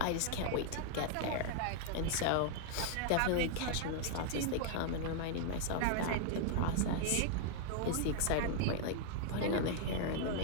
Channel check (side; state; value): both; different; correlation 0.00